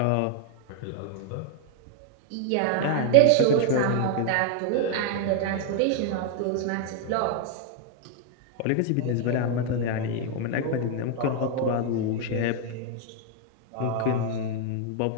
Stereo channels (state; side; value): different; both; correlation 0.00